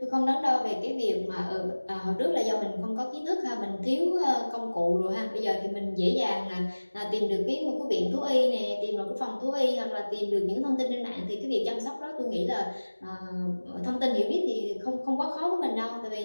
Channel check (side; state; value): both; inverted; correlation -1.00